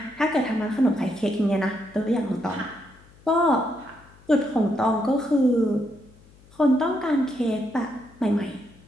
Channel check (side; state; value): left; noise; hum, 26 dB below the sound